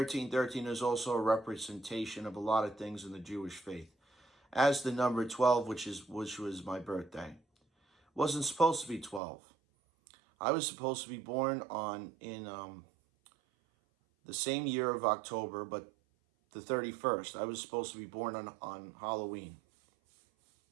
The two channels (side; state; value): left; drops out; at 9.2 s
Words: is also a representation of a lot of things in the Jewish faith. As the number 12, which was my birthday. It wasn't supposed to be 12. I was supposed to be born in the same year of October, but the 31st. I was supposed to be born on Halloween.